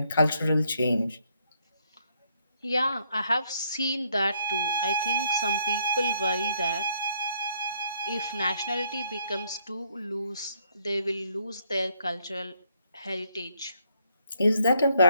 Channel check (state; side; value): inverted; both; correlation -0.71